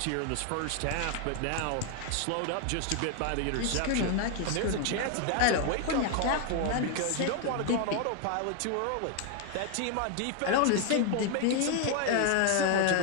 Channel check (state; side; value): different; both; correlation 0.00